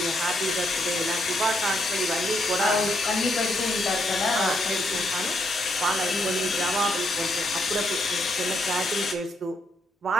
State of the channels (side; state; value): both; normal; correlation 0.76